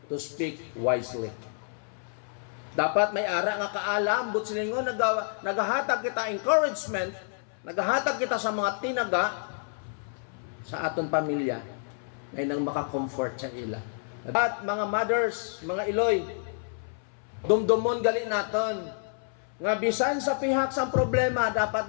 to speak wisely. Dapat may ara nga kaalam, but silingon nagahatag kita encouragement, nagahatag kita sa mga tinaga sa aton pamilya ngay nang maka-comfort sa ila. At mga mothers, mga Eloy, dumdumon gali naton nga bisan sa pihak sang problema, dapat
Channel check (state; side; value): silent; right; 59 dB below the other